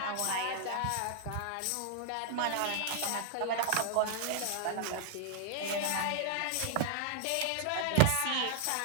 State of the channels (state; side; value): different; both; correlation 0.00